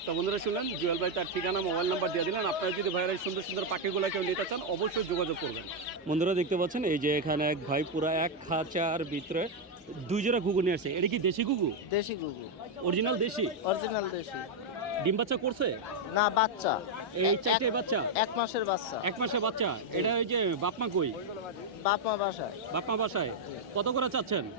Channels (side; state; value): both; normal; correlation 0.01